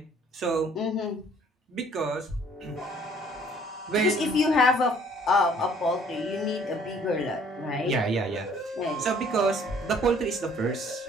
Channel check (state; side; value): normal; both; correlation 0.58